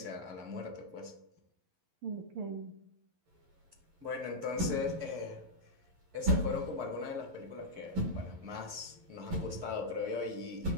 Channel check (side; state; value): left; late; 11 ms